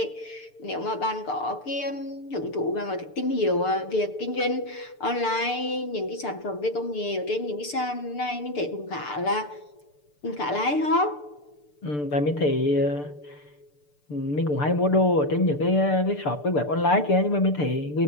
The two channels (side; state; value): right; late; 6.8 ms